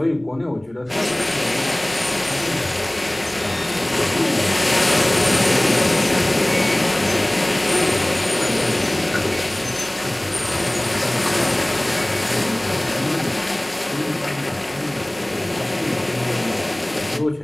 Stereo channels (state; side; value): noise; right; rumble, 30 dB below the sound